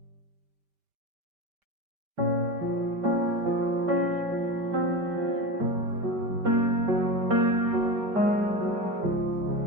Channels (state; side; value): late; left; 5.1 ms